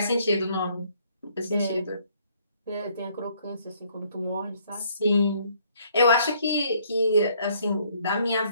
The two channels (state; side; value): inverted; both; correlation -0.65